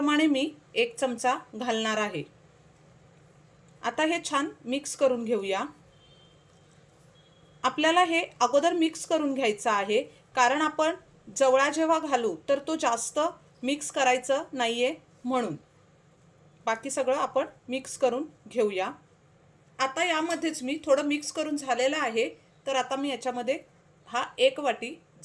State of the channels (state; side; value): identical; both; correlation 1.00